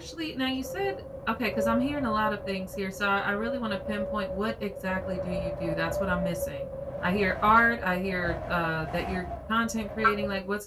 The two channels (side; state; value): both; identical; correlation 1.00